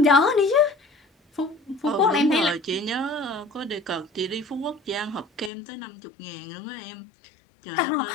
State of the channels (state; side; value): drops out; right; at 5.5 s